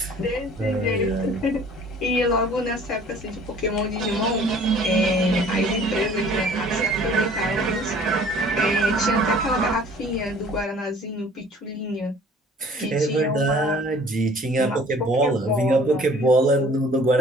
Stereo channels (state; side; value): normal; both; correlation 0.51